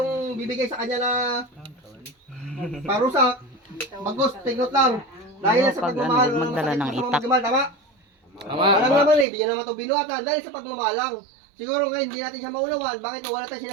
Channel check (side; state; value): left; drops out; at 9.2 s